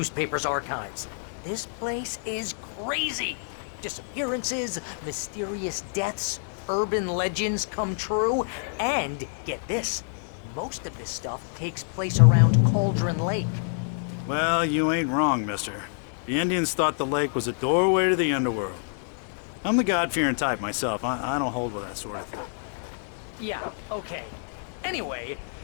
archives. This place is crazy. Disappearances, mysterious deaths, urban legends come true, and get this, most of this stuff takes place around Cauldron Lake. Well, you ain't wrong, mister. The Indians thought the lake was a doorway to the underworld. I'm the God-fearing type myself. I don't hold with that sort of thing. Yeah, okay. Anyway,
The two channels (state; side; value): silent; right; digital silence